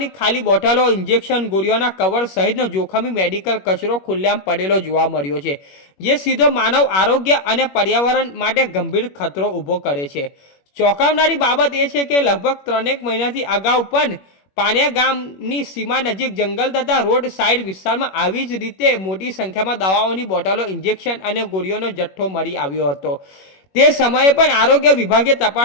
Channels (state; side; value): late; right; 21 ms